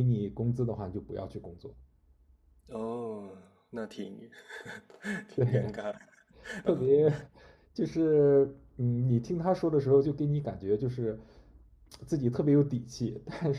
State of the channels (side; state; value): both; identical; correlation 1.00